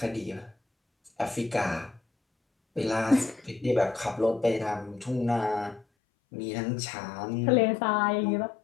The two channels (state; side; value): drops out; right; at 5.9 s